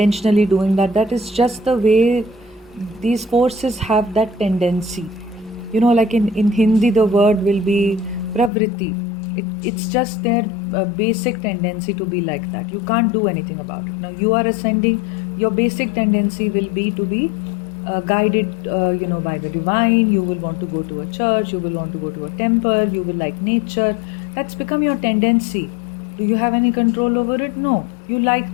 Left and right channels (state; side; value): drops out; right; at 8.5 s